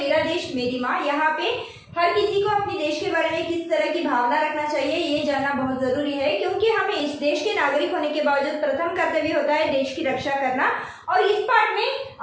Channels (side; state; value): both; identical; correlation 1.00